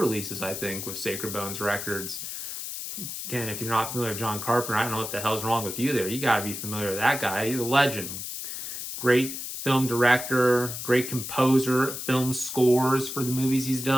I think, with Sacred Bones Records. Again, if you're not familiar with John Carpenter, I don't know what the hell's wrong with you there. You got to be familiar with that guy. He's a legend. Great film director, great composer, film scores for the movies he's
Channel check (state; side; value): noise; left; hiss, 7 dB below the sound